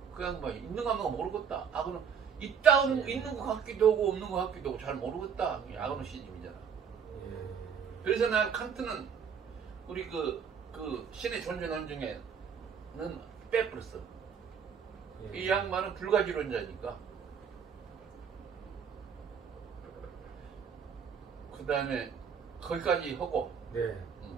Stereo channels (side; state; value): left; quieter; 7.0 dB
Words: 그냥 뭐 있는 거 없는 거 모르겠다. 그럼 있다는 있는 거 같기도 하고 없는 거 같기도 하고 잘 모르겠다. 아그노 시즘이잖아. 예. 그래서 난 칸트는 우리 그 신의 존재 논증에는 빼버렸어. 예. 이 양반은 불가지론자니까. 그 다음에 거기까지 하고, 네.